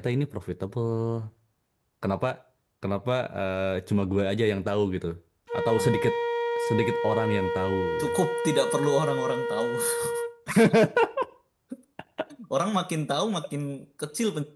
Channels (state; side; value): identical; both; correlation 1.00